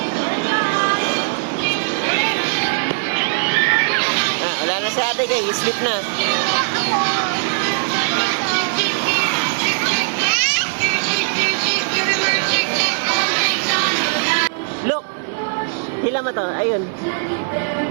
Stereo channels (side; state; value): left; silent; digital silence